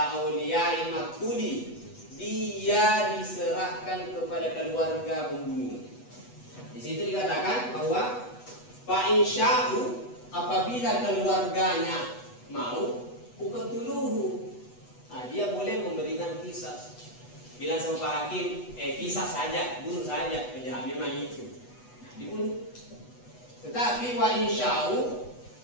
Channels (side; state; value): right; late; 8.1 ms